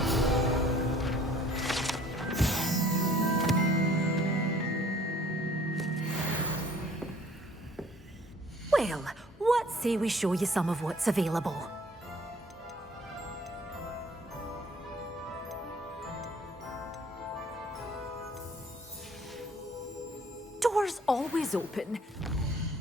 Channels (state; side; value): normal; both; correlation 0.56